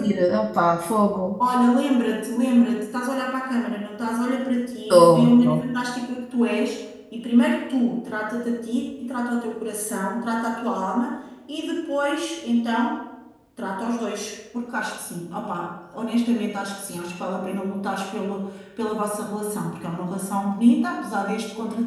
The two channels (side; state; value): both; identical; correlation 1.00